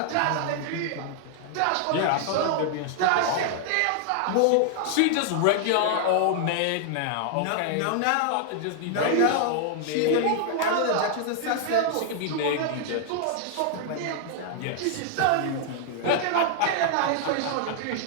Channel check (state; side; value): different; both; correlation 0.00